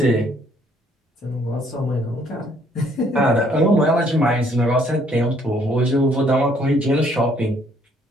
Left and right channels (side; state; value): both; normal; correlation 0.64